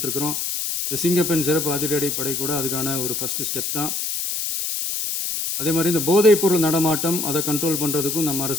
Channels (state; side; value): noise; left; hiss, 2 dB below the sound